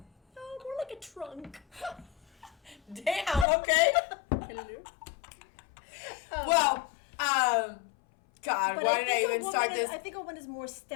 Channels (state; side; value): drops out; right; at 3.5 s